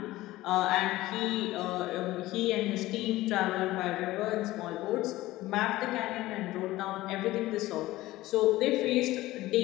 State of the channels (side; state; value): right; quieter; 17.3 dB